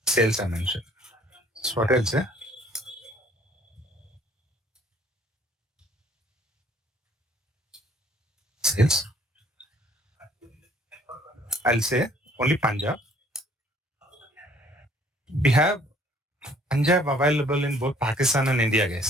sales I mentioned. So what else? sales. I'll say only Punjab. We have Punjab available in both Pakistan and India,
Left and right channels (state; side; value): normal; both; correlation 0.59